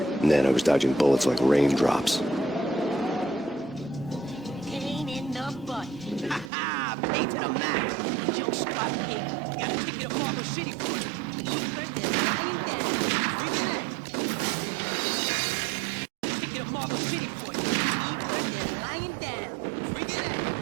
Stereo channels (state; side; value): drops out; left; at 6.5 s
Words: then I was dodging bullets like raindrops. Pain in the butt. Ha ha! Pain to the max. Junk squad pig. Got a ticket to Marble City for it. Ticket to Marble City for it. They're lying down. Freaking out.